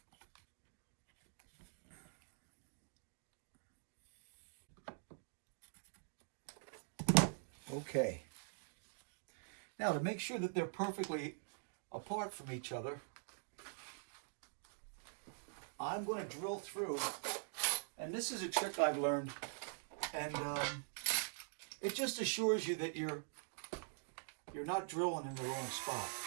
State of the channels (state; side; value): silent; left; digital silence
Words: Okay. Now to make sure that they're perfectly apart from each other, I'm going to drill through, and this is a trick I've learned, and it just assures you that you're not drilling in the wrong spot.